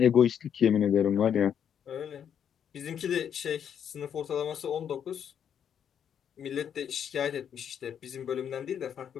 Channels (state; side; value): quieter; right; 8.5 dB